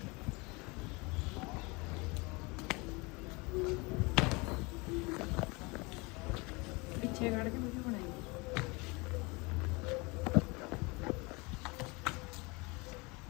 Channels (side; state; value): right; quieter; 26.8 dB